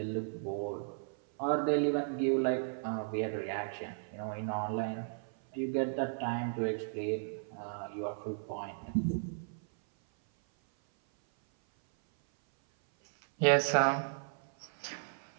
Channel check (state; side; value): silent; left; 54 dB below the other